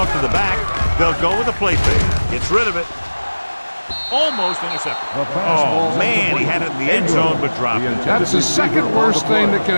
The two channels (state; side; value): inverted; both; correlation -1.00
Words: to the back. They'll go with a play fake. Gets rid of it. Almost intercepted. Oh, man, he had it in the end zone but dropped it. That's the second worst thing that can